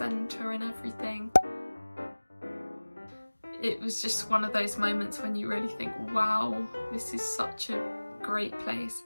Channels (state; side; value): inverted; both; correlation -1.00